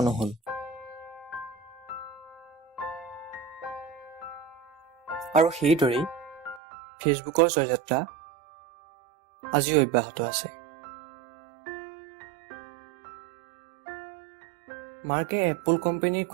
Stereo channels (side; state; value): left; drops out; at 6.6 s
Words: নহ'ল। আৰু সেইদৰেই ফেচবুকৰ জয়যাত্ৰা আজিও অব্যাহত আছে। মাৰ্কে এপল কোম্পানীৰ